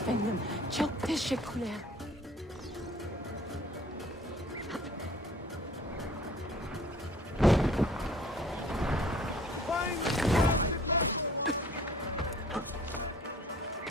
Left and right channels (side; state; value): both; normal; correlation 0.52